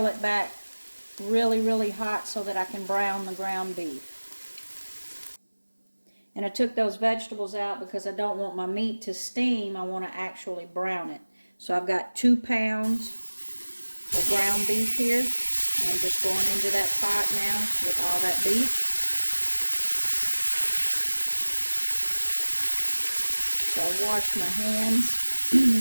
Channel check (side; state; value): both; inverted; correlation -1.00